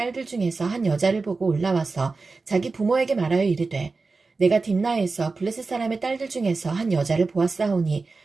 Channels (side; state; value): left; quieter; 4.0 dB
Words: 중에서 한 여자를 보고 올라와서 자기 부모에게 말하여 이르되 내가 딥나에서 블레셋 사람의 딸들 중에서 한 여자를 보았사오니